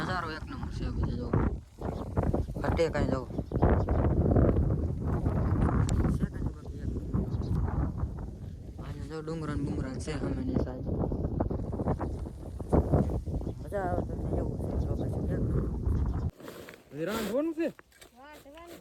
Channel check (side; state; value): both; identical; correlation 1.00